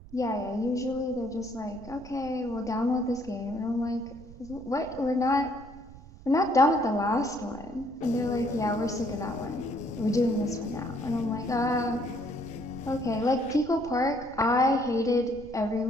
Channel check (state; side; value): noise; right; rumble, 18 dB below the sound